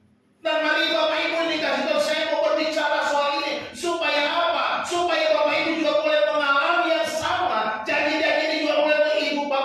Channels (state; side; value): identical; both; correlation 1.00